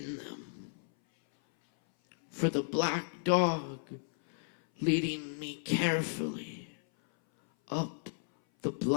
them, for the black dog leading me carefully up the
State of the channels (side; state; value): right; silent; 55 dB below the other